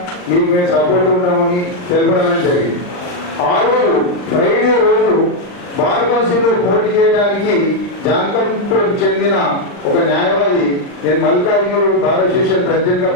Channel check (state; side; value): late; right; 39 ms